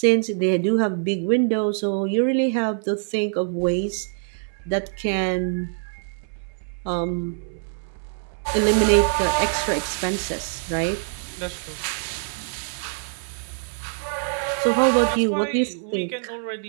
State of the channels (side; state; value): left; silent; 62 dB below the other